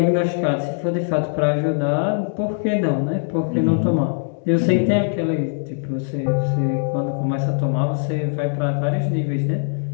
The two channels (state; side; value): silent; right; digital silence